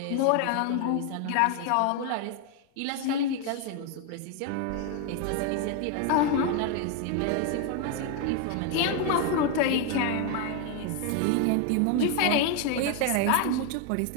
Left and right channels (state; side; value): different; both; correlation 0.01